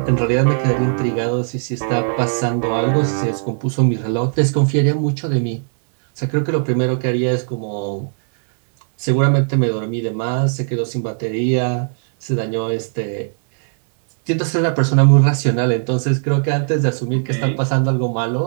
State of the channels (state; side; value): silent; left; digital silence